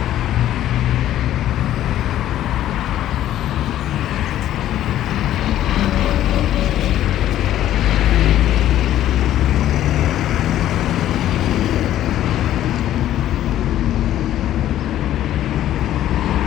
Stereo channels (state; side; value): quieter; right; 12.5 dB